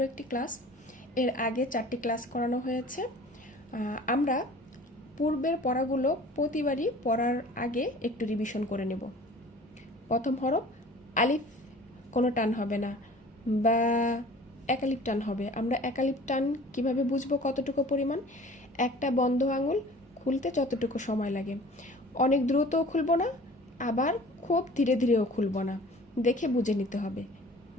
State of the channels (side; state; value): both; normal; correlation 0.46